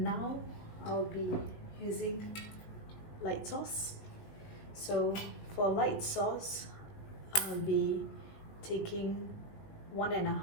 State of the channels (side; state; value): right; late; 19 ms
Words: now I'll be using light sauce. So for light sauce, I'll be taking